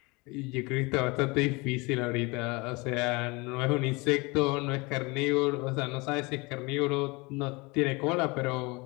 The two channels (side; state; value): right; quieter; 26.1 dB